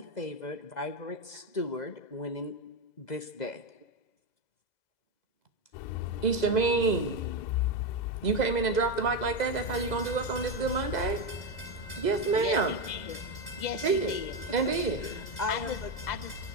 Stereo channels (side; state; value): right; late; 2.0 ms